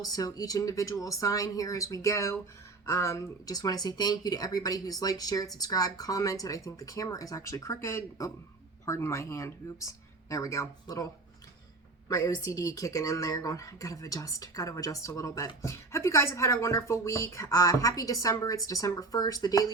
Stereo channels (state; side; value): quieter; left; 3.7 dB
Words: so each individual sign here as we go. Just want to say thank you to everybody who's liked, shared, subscribed, commented. I think the camera is actually crooked. Oh, pardon my hand. Oops. There we go. My OCD kicking in there, going, gotta adjust a little bit. Hope you guys have had a wonderful week. Happy December. It's December 1st, the